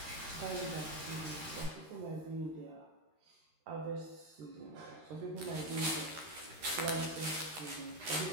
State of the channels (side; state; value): left; late; 13 ms